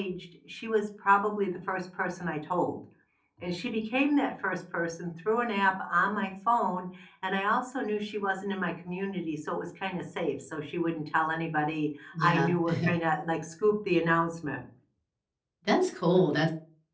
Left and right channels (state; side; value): identical; both; correlation 1.00